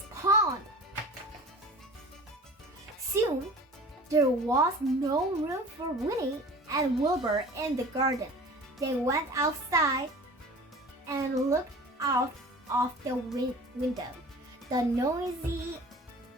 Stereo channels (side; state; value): both; normal; correlation 0.41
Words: pond. Soon, there was no room for Winnie and Wilbur in the garden. They went outside and looked out of the window. The noise